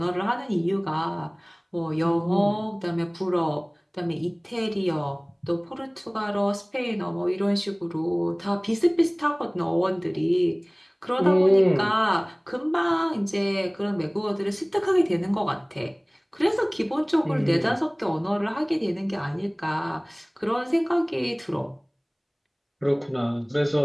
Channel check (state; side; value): identical; both; correlation 1.00